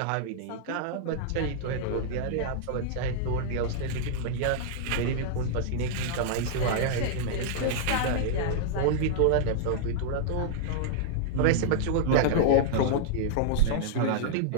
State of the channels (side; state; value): both; different; correlation -0.01